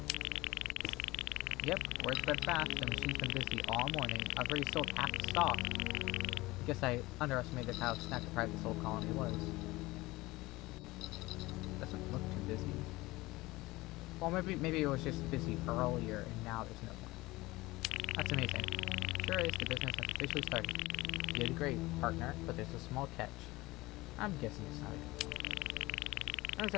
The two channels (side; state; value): right; quieter; 20.4 dB